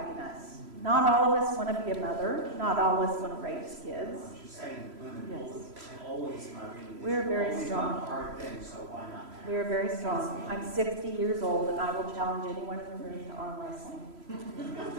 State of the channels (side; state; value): left; late; 3.0 ms